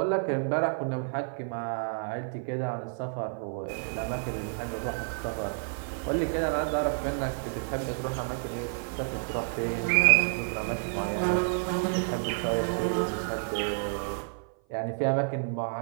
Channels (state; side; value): silent; left; 55 dB below the other